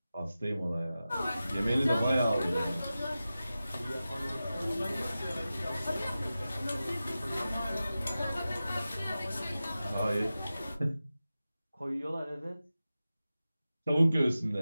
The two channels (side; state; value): both; inverted; correlation -0.94